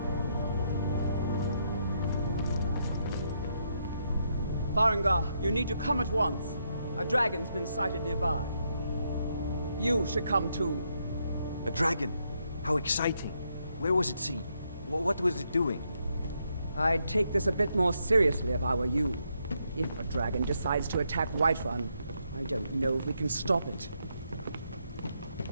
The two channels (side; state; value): both; inverted; correlation -0.78